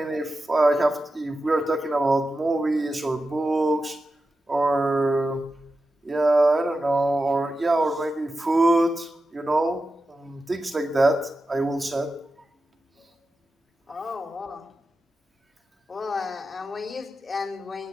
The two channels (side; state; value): both; normal; correlation 0.91